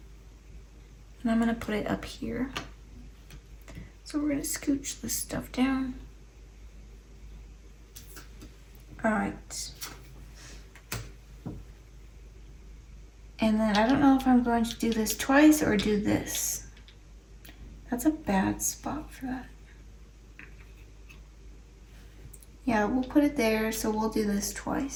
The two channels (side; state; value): both; identical; correlation 1.00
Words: And I'm going to put it up here. So we're going to scooch this stuff down. Alright. And then I don't know if I'm going to do this twice or do this. That's a bad spot for that. Yeah, we'll put it there, so we'll do this